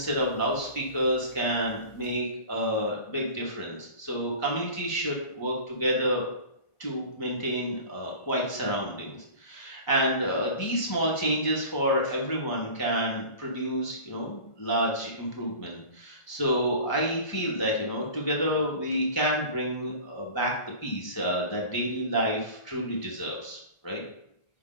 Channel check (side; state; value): right; late; 1.5 ms